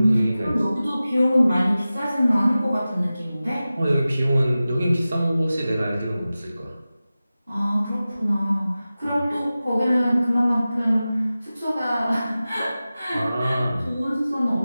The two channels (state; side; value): inverted; both; correlation -0.96